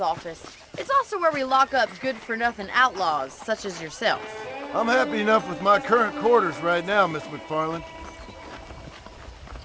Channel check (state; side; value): identical; both; correlation 1.00